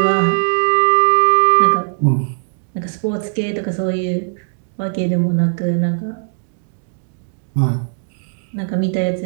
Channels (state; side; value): silent; left; 67 dB below the other